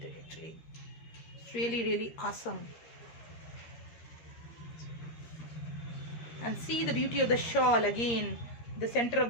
actually? It's really awesome. And see the beauty of the shawl again. The center of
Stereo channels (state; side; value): late; right; 13 ms